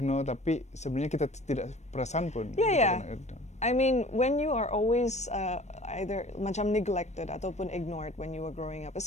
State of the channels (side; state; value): right; late; 0.33 ms